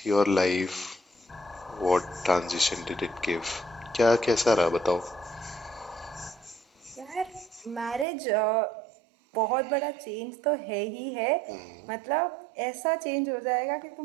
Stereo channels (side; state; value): left; drops out; at 8.1 s